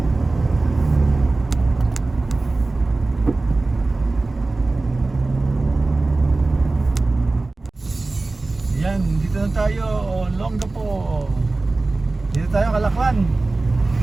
Yan, dito na tayo, Olongapo. Dito tayo, Kalakwan.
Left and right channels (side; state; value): left; quieter; 3.3 dB